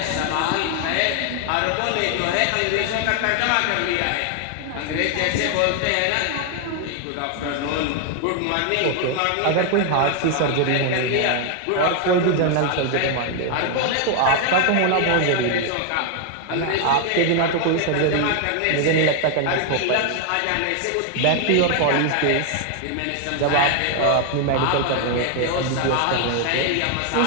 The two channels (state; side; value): different; both; correlation 0.00